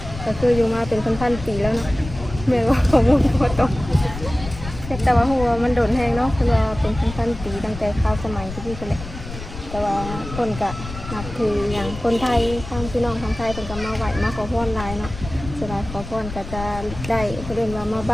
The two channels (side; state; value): left; noise; rumble, 11 dB below the sound